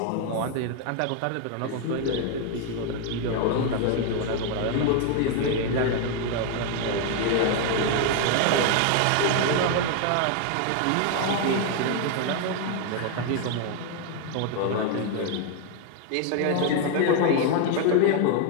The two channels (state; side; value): different; both; correlation 0.01